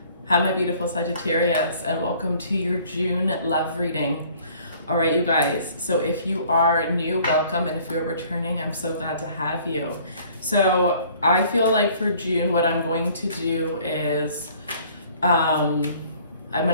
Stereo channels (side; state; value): both; inverted; correlation -0.55